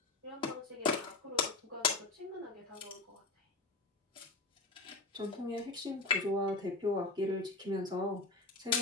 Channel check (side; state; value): right; quieter; 3.4 dB